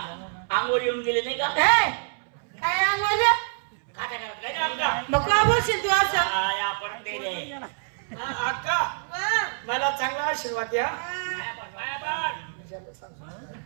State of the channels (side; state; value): left; silent; 61 dB below the other